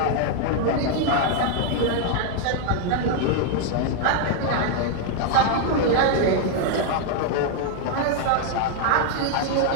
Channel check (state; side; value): different; both; correlation 0.00